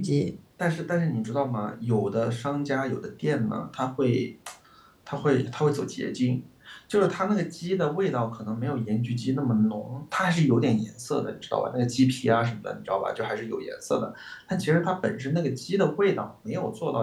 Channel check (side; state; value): both; identical; correlation 1.00